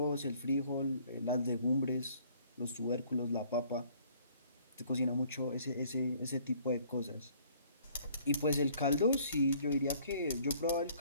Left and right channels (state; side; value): inverted; both; correlation -0.59